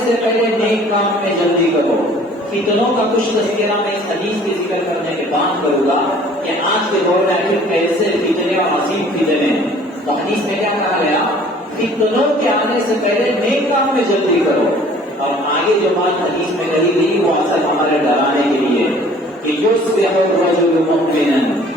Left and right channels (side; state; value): both; normal; correlation 0.52